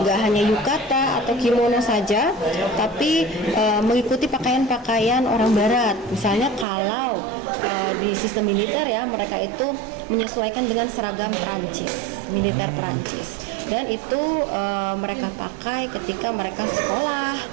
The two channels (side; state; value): left; drops out; at 6.7 s